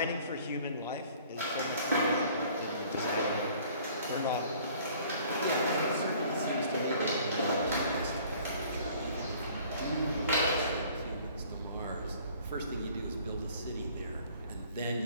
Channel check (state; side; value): inverted; both; correlation -0.53